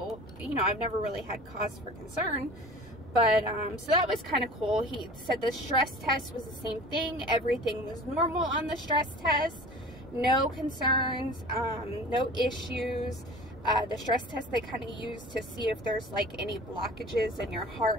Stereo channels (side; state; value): both; normal; correlation 0.41